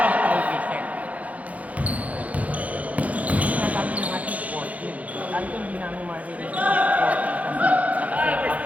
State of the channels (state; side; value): late; left; 0.069 ms